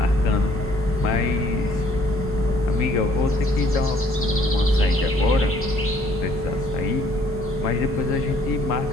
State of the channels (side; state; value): both; normal; correlation 0.62